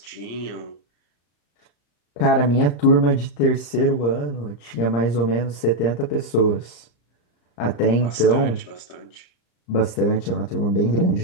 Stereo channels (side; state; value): right; late; 34 ms